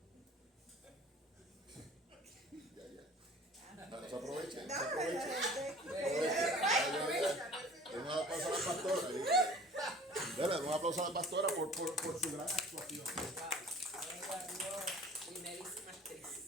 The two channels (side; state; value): both; normal; correlation 0.46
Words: Ya. Se aprovechen. Se aprovechen. Un aplauso a la pastora. Dale, un aplauso a la pastora por su gran actuación.